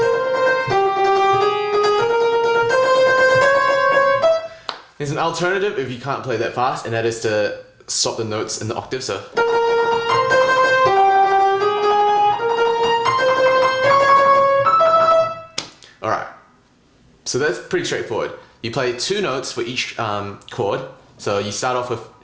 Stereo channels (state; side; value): identical; both; correlation 1.00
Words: There's an alternative if you can't play that fast, and that is to swap the notes in the octave. So, all right. So that's pretty straightforward. You play 2 notes for each chord. So you start off with